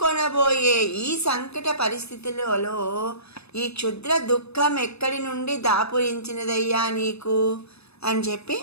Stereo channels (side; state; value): right; late; 0.79 ms